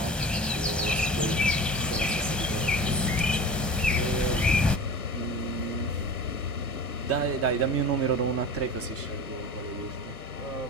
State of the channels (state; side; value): normal; both; correlation 0.35